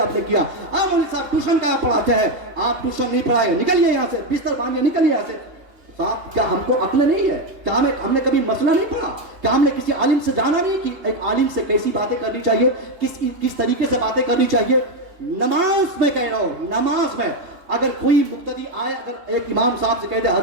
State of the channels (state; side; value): late; left; 2.8 ms